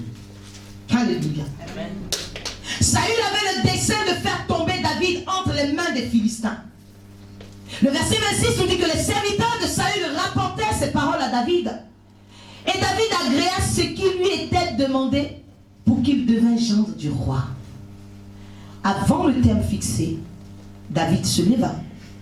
Alléluia. Amen. Saül avait le dessein de faire tomber David entre les mains des Philistins. Le verset 26 nous dit que les serviteurs de Saül rapportèrent ces paroles à David. Et David agréa ce qui lui était demandé pour qu'il devînt gendre du roi. Avant le terme fixé, David se leva,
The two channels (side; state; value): both; identical; correlation 1.00